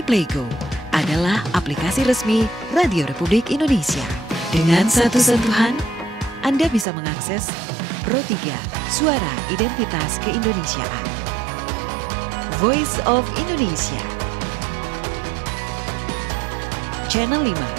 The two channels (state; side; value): drops out; left; at 6.9 s